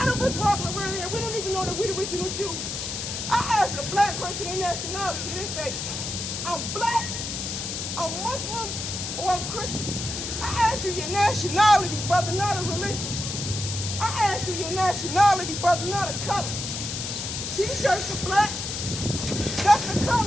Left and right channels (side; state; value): left; noise; hiss, 5 dB below the sound